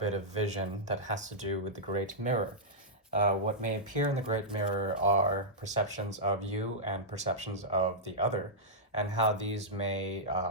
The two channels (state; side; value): normal; both; correlation -0.12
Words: of vision that has to do with the Great Mirror. What may appear in the Great Mirror are perceptions of you and perceptions of the other, and how these may